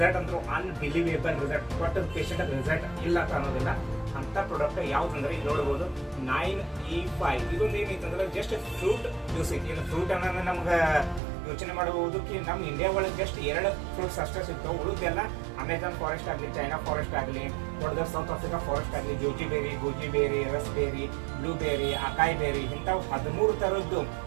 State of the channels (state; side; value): drops out; left; at 11.2 s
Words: ಅಂದ್ರೆ unbelievable result, but patient result ಇಲ್ಲ ಅಂತ ಅನ್ನೋದಿಲ್ಲ. ಅಂತ ಪ್ರಾಡಕ್ಟ್ ಯಾವ್ದಂದ್ರೆ ಇಲ್ಲಿ ನೋಡಬಹುದು 9E5. ಇದೊಂದು ಏನೈತಂದ್ರೆ ಜಸ್ಟ್ ಫ್ರೂಟ್ ಜ್ಯೂಸ್ ಐತಿ. ಇದು ಫ್ರೂಟ್ ಅನ್ನೋದು ನಮ್ಗೆ ಯೋಚನೆ ಮಾಡಬಹುದು ನಮ್ಮ ಇಂಡಿಯಾ ಒಳಗೆ ಜಸ್ಟ್ 2 ಫ್ರೂಟ್ಸ್ ಅಷ್ಟೇ ಸಿಗ್ತಾವೆ. ಉಳಿದೆಲ್ಲ ಅಮೆಝಾನ್ ಫಾರೆಸ್ಟ್ ಆಗಲಿ, ಚೈನಾ ಫಾರೆಸ್ಟ್ ಆಗಲಿ, ದೊಡ್ಡ ಸೌತ್ ಆಫ್ರಿಕಾ ಫಾರೆಸ್ಟ್ ಆಗಲಿ, ಜೋಜಿಬೇರಿ, ಗೂಜಿಬೇರಿ, ರಸ್ಬೇರಿ, ಬ್ಲೂಬೇರಿ, ಅಕಾಯಿ ಬೇರಿ, ಇಂಥವು 13 ಥರದ್ದು